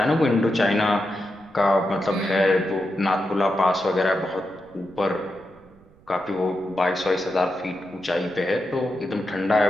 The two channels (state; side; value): noise; right; rumble, 27 dB below the sound